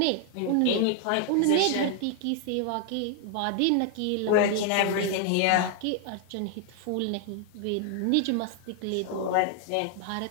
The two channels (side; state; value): both; different; correlation 0.00